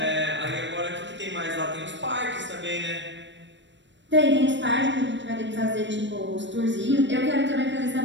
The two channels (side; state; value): left; late; 0.53 ms